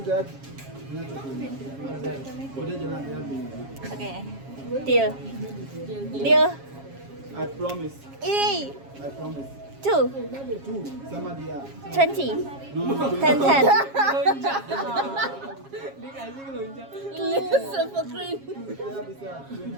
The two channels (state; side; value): late; left; 7.3 ms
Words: dah. Udah jalan ya. Oke. Deal. Deal. I promise. I promise. 2, Two sama dia. 20, No, 10, 10. Super cream. Tidak bisa.